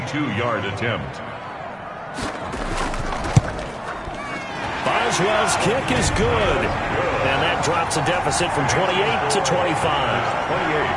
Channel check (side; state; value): both; identical; correlation 1.00